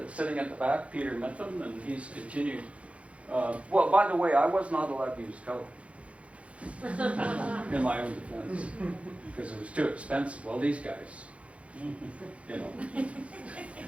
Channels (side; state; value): left; late; 0.063 ms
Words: sitting at the back, Peter Mitham, and he's continued. Well, by the way, I was not allowed to use color in my own defense because it was too expensive. Well, these guys, you know.